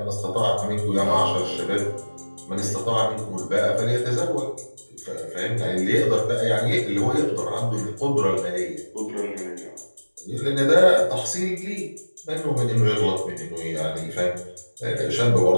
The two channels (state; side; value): inverted; both; correlation -1.00